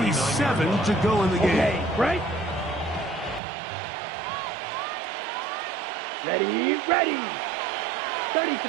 to go in the game. Okay, right. Ready.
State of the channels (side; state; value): left; drops out; at 3.4 s